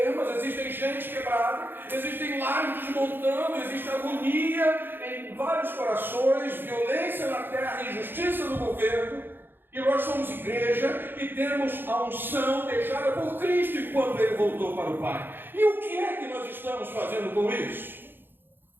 existem gente quebrada, existem lares desmontando, existe agonia em vários corações, violência na terra, injustiça no governo. E nós somos igreja e temos a unção deixada por Cristo enquanto Ele voltou para o Pai. E o que é que nós estamos fazendo com isso?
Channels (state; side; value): late; left; 0.099 ms